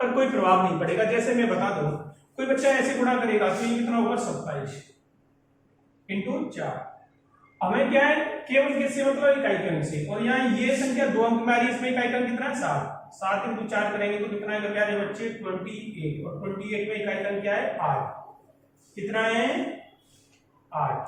कोई प्रभाव नहीं पड़ेगा। जैसे मैं बता दूं, कोई बच्चा ऐसे गुणा करेगा तो ये कितना होगा? 27 इंटू 4। हमें क्या है, केवल किससे मतलब? इकाई के अंक से। और यहाँ ये संख्या 2 अंक में आ रही है, इसमें इकाई का अंक कितना है? 7। 7 इंटू 4 करेंगे तो कितना है प्यारे बच्चे? 28। और 28 में इकाई का अंक क्या है? 8। कितना है? 8।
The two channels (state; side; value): identical; both; correlation 1.00